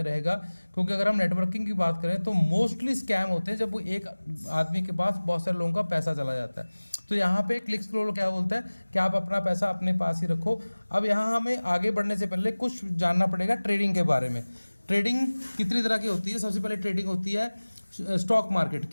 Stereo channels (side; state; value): both; inverted; correlation -1.00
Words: रहेगा। क्योंकि अगर हम नेटवर्किंग की बात करें तो मोस्टली स्कैम होते हैं जब वो एक आदमी के पास बहुत सारे लोगों का पैसा चला जाता है। तो यहाँ पे क्लिक्स ग्लोबल क्या बोलता है कि आप अपना पैसा अपने पास ही रखो। अब यहाँ हमें आगे बढ़ने से पहले कुछ जानना पड़ेगा ट्रेडिंग के बारे में। ट्रेडिंग कितनी तरह की होती है? सबसे पहले ट्रेडिंग होती है स्टॉक मार्केट